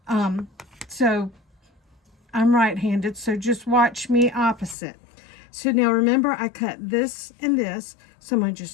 So I'm right-handed, so just watch me opposite. So now remember, I cut this and this, so I'm going to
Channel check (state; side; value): drops out; right; at 4.8 s